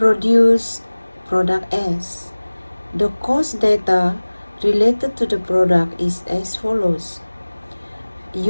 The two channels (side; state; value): both; inverted; correlation -1.00